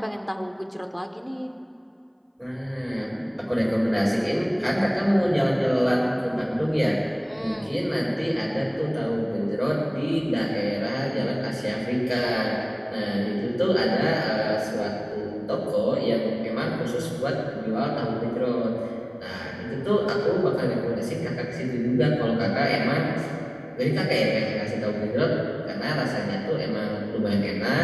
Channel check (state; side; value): identical; both; correlation 1.00